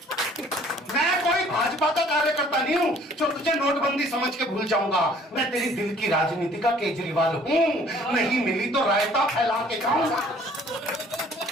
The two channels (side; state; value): both; normal; correlation 0.56